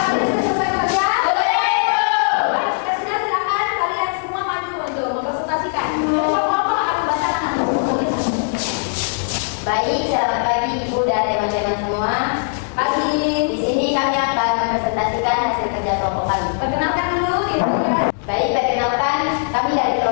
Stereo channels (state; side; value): silent; right; digital silence